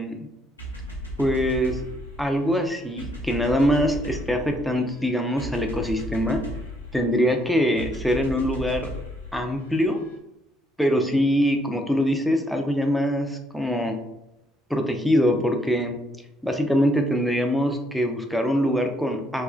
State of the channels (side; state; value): both; normal; correlation 0.71